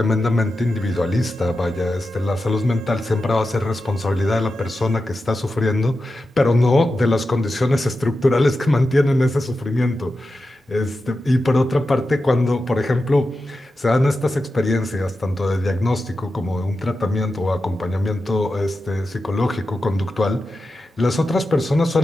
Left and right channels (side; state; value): both; normal; correlation 0.91